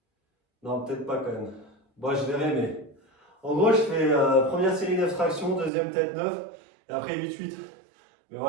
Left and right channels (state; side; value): drops out; left; at 5.7 s